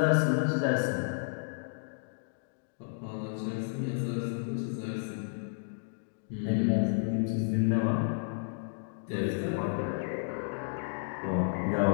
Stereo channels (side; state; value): right; silent; digital silence